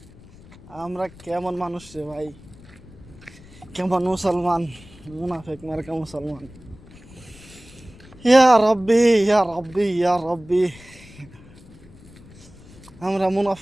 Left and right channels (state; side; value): noise; left; rumble, 21 dB below the sound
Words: আমরা কেমন মানুষ রে ভাই, কেমন মুসলমান, মুনাফিক মার্কা মুসলমান। ইয়া রব্বি, ইয়া রব্বি, ইয়া রব্বি। আমরা